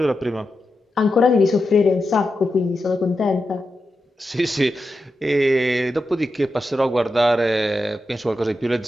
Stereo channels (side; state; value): both; normal; correlation 0.89